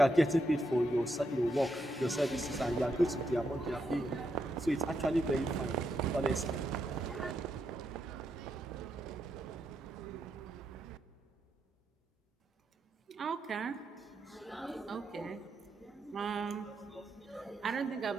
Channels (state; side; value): normal; both; correlation 0.81